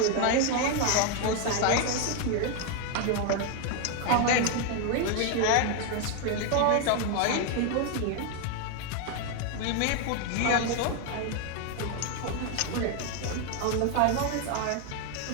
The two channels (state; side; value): different; both; correlation 0.01